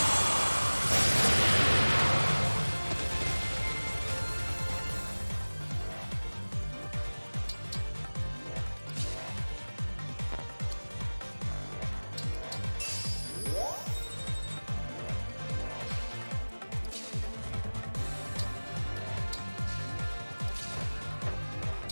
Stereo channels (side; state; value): both; inverted; correlation -1.00